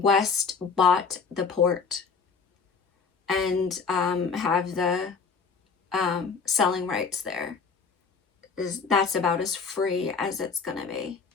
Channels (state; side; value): quieter; right; 5.3 dB